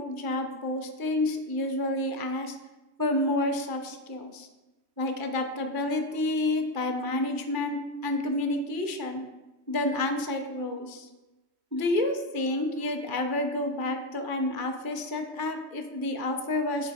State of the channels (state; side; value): late; left; 3.1 ms